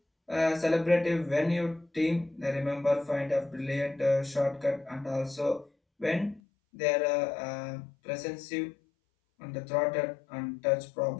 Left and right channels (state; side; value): drops out; right; at 6.4 s